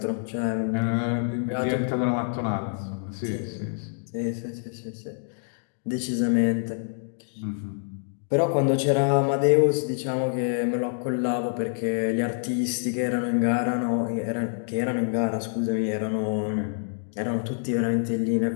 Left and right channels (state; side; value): silent; right; digital silence